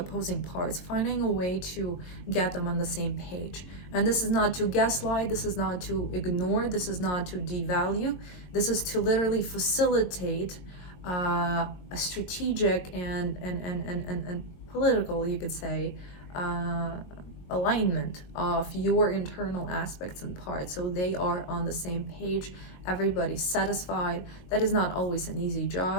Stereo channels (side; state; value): right; late; 22 ms